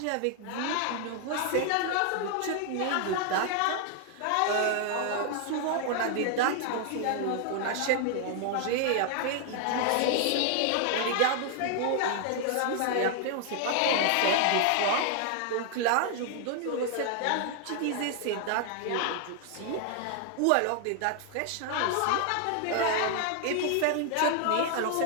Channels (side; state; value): both; different; correlation 0.00